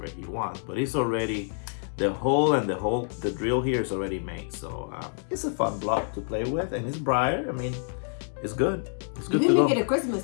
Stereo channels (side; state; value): right; silent; 60 dB below the other